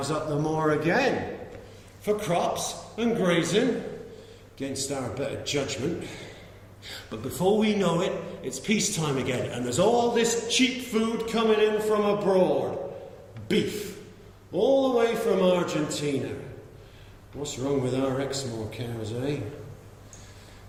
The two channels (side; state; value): both; identical; correlation 1.00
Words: up the moor again. For crops and grazing, against our better judgment. But before we know it, it's peacetime again, and there's all this cheap food coming in from abroad. Beef, all the way from Argentina. What's wrong with our Exmoor cows, eh?